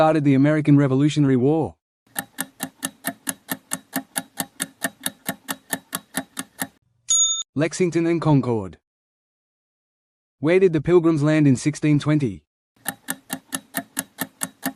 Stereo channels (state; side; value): identical; both; correlation 1.00